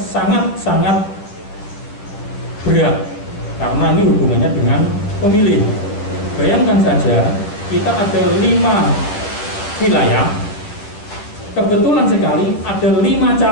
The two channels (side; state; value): right; late; 9.9 ms